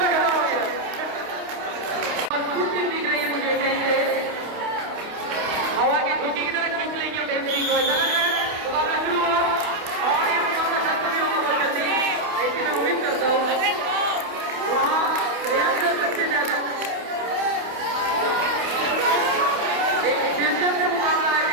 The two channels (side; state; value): left; late; 28 ms